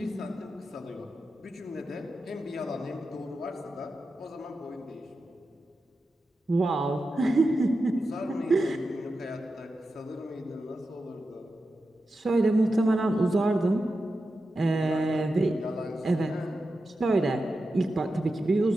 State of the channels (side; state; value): both; normal; correlation 0.90